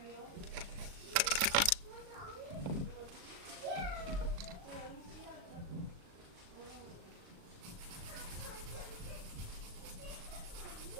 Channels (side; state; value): left; late; 37 ms